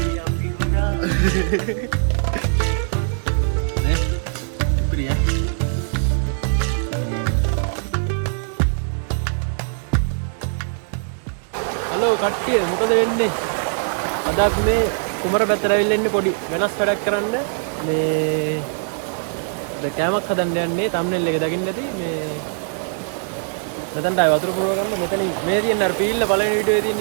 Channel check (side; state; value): left; silent; digital silence